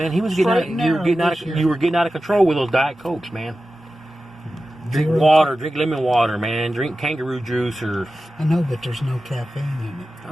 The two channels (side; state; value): both; normal; correlation 0.94